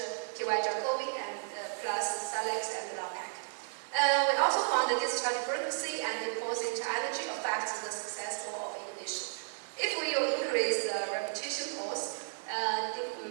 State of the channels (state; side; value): silent; left; digital silence